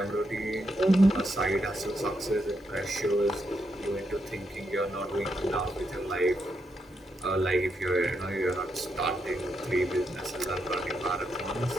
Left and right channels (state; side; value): normal; both; correlation 0.81